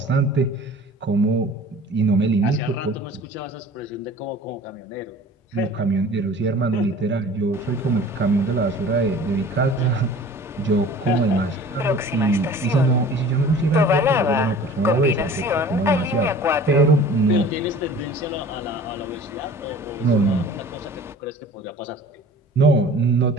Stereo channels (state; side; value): normal; both; correlation 0.44